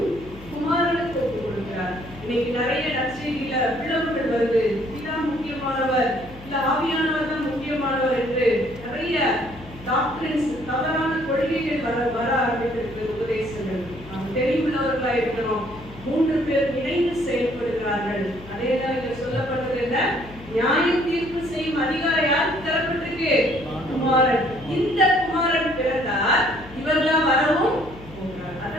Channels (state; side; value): noise; left; hum, 18 dB below the sound